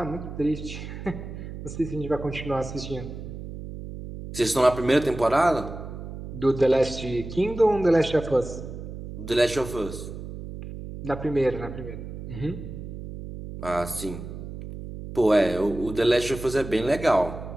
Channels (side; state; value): right; noise; hum, 10 dB below the sound